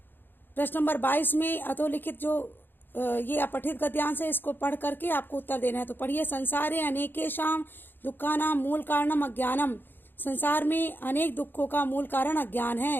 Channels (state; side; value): late; right; 0.096 ms